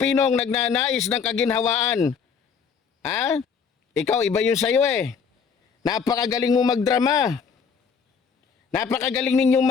nagnanais ng kaginhawaan. Ikaw, iba yun sa'yo eh. Napakagaling mo magdrama. Napakagaling ninyong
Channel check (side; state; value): right; quieter; 6.1 dB